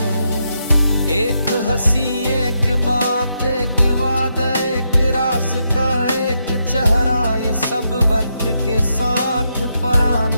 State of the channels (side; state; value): both; inverted; correlation -0.82